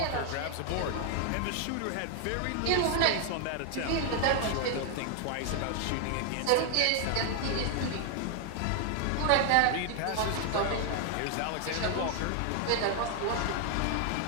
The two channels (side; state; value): both; different; correlation 0.00